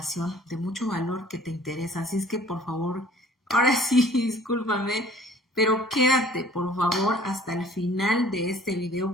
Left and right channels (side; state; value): both; normal; correlation 0.52